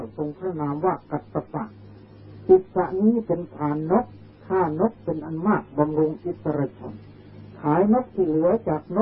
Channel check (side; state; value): both; identical; correlation 1.00